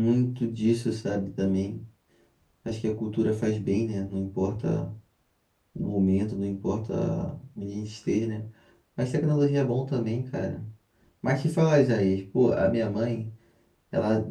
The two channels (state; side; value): identical; both; correlation 1.00